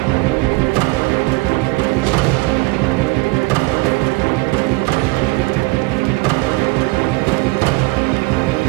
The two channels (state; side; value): quieter; left; 24.4 dB